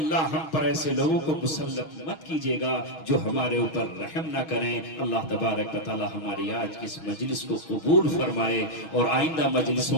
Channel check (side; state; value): right; late; 6.3 ms